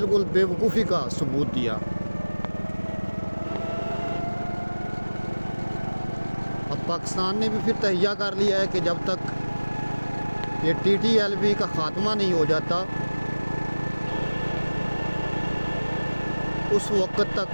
बेवकूफ़ी का सबूत दिया। अब पाकिस्तान ने भी फिर तहैया कर लिया है कि जब तक ये TTLP का ख़ात्मा नहीं हो जाता, उस वक़्त तक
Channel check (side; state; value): both; inverted; correlation -1.00